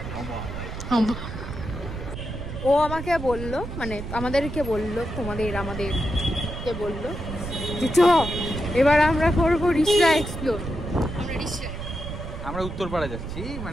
ও আমাকে বললো, মানে আমাদেরকে বললো, আমাদেরকে বললো যে চ এবার আমরা করবো রিসরা এক্সপ্লোর। আমরা উত্তরপাড়া যাচ্ছি,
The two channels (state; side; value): noise; right; rumble, 7 dB below the sound